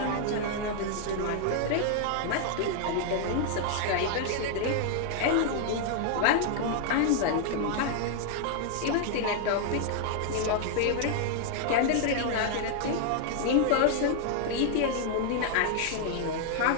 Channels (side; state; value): both; different; correlation 0.00